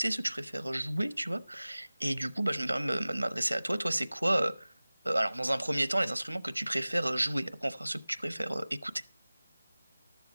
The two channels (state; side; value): inverted; both; correlation -0.98